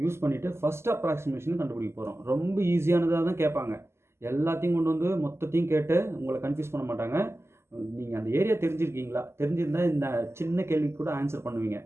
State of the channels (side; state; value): left; late; 0.12 ms